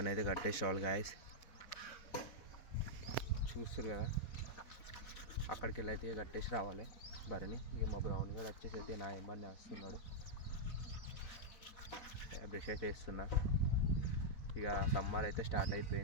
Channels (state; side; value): late; right; 4.1 ms